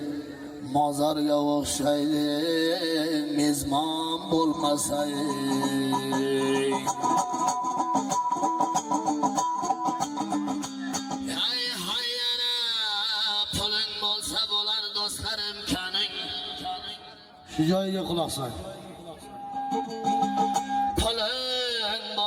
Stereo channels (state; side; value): identical; both; correlation 1.00